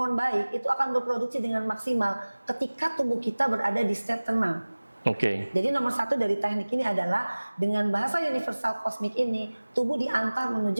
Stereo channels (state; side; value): inverted; both; correlation -1.00